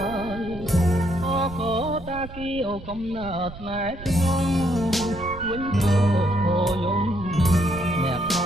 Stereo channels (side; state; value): right; noise; rumble, 14 dB below the sound